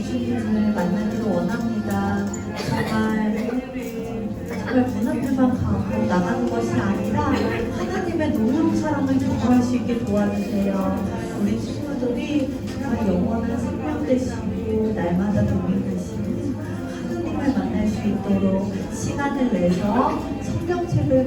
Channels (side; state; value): both; identical; correlation 1.00